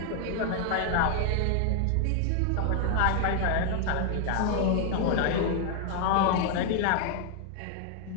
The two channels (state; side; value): different; both; correlation 0.00